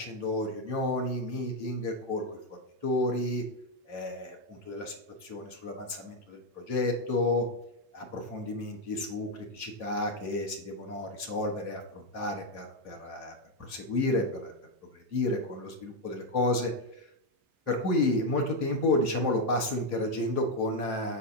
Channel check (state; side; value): late; left; 3.2 ms